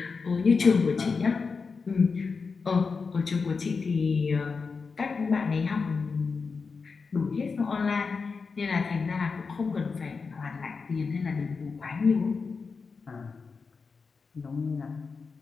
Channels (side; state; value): right; quieter; 4.9 dB